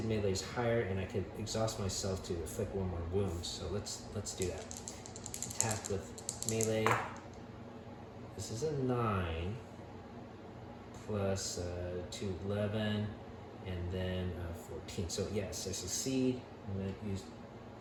melee is higher, and I could exhaust myself to inflict 1 more wound. So let's do that. Attack with melee. This is a 9 plus 2, 11, and then 14. So yes, I succeed. I'm going to use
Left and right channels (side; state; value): both; identical; correlation 1.00